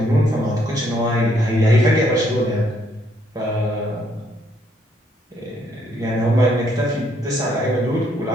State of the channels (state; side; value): normal; both; correlation 0.70